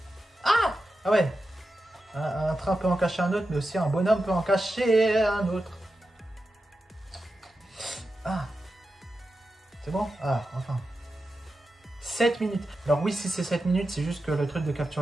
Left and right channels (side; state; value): both; normal; correlation 0.90